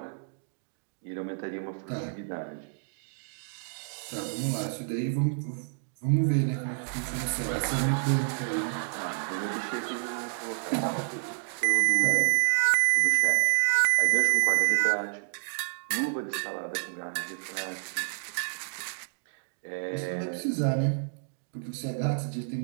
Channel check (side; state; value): left; silent; digital silence